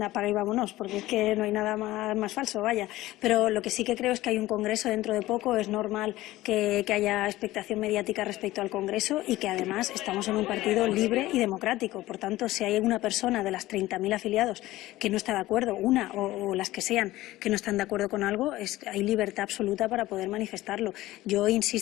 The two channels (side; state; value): right; quieter; 16.8 dB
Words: apaga y vámonos, porque es que no hay nada más falso, vaya. Pero lo que sí que creo es que hay un Congreso dentro de poco, es normal que haya expectación mediática respecto al Congreso y que además estamos en un partido libre y democrático. Por tanto, si hay una persona de las 30.000 afiliados que no está de acuerdo, una o las que sean, que no están de acuerdo con algo, hay libertad absoluta para poder manifestarlo. Yo